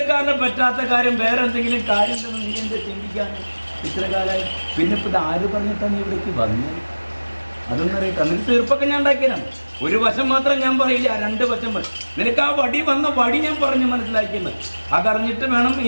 പറ്റാത്ത കാര്യം വേറെ എന്തെങ്കിലും കാര്യം ഉണ്ടെന്ന് നീ എന്താ ചിന്തിക്കാൻ ഇത്ര കാലമായി? പിന്നെ ഇപ്പം ഇത് ആര് പറഞ്ഞിട്ടാണ് നീ ഇവിടേക്ക് വന്നത്? അതൊന്നും അറിയട്ടെ. നിനക്ക് തീർപ്പൊക്കെ ഞാൻ ഉണ്ടാക്കിയതാണ്. ഒരു വശം മാത്രം ഞാൻ പറയില്ല, 2 വശം പറയും. നിനക്ക് ആ വടി വന്ന വടി ഞാൻ പറഞ്ഞു മനസ്സിലാക്കിയത്. അതറിഞ്ഞിട്ട് വേണം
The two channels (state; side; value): inverted; both; correlation -1.00